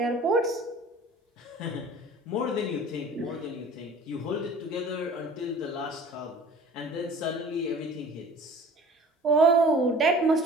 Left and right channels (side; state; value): both; normal; correlation 0.46